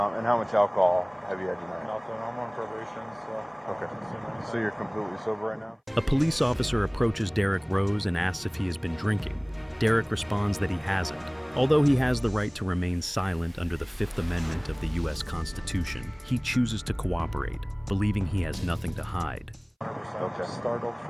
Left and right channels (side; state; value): both; identical; correlation 1.00